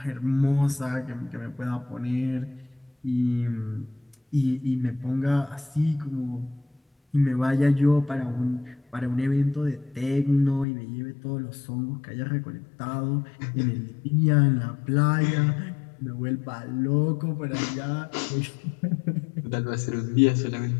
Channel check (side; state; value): right; drops out; at 10.7 s